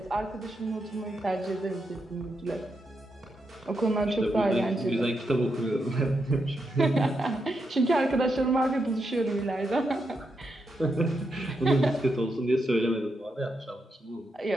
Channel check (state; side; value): normal; both; correlation 0.83